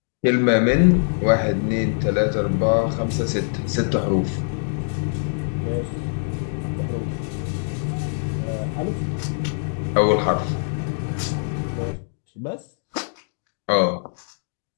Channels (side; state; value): right; silent; digital silence